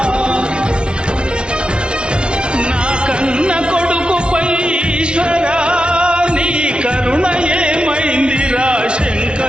నా కన్న కొడుకుపై ఈశ్వరా, నీ కరుణ ఏమైందిరా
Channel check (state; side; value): late; left; 0.057 ms